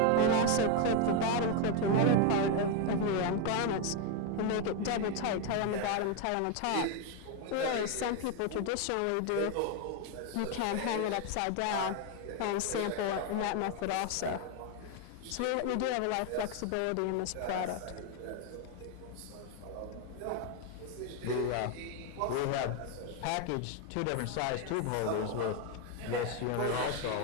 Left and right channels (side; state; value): both; different; correlation 0.01